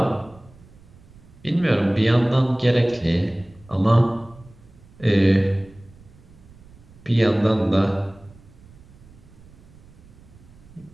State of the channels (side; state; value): right; noise; rumble, 24 dB below the sound